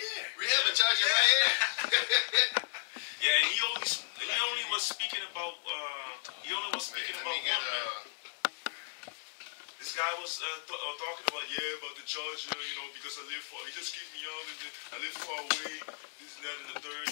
We have a charger right here. Yeah, and he only was speaking about one, man. This guy was talking about about the charger, because I live far. He just kicked me out, and I live far away. This and that and the third.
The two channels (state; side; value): silent; right; 55 dB below the other